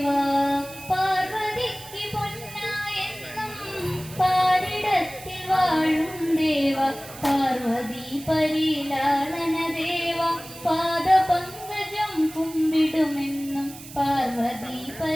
പാർവതിക്ക് പൊന്നായെന്നും പാരിടത്തിൽ വാഴും ദേവാ, പാർവതി പരിലാളന ദേവാ, പാദപങ്കജം കുമ്പിടുമെന്നും പാർവതി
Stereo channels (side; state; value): right; noise; hiss, 16 dB below the sound